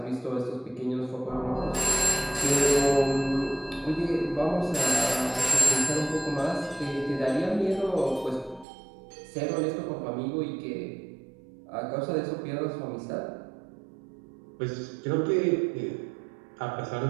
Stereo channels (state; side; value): drops out; left; at 8.7 s